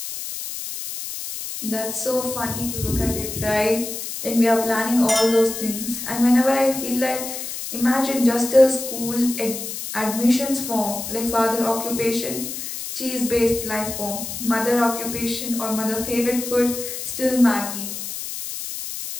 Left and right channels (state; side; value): noise; left; hiss, 7 dB below the sound